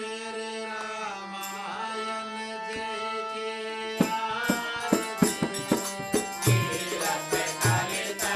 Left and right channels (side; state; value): both; identical; correlation 1.00